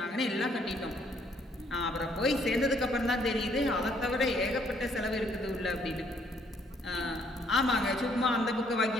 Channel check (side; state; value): both; normal; correlation 0.67